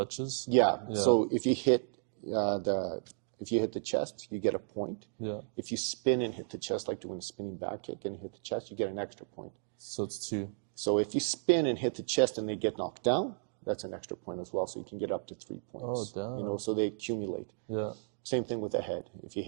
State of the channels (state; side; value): silent; left; digital silence